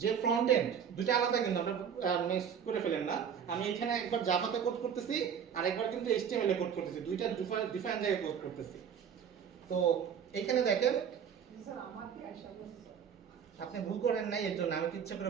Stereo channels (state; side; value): quieter; left; 7.8 dB